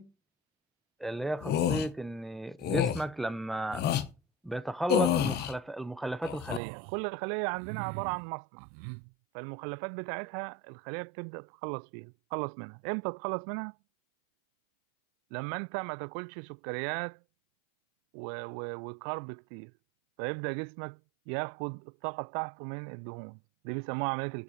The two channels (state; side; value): drops out; left; at 6.6 s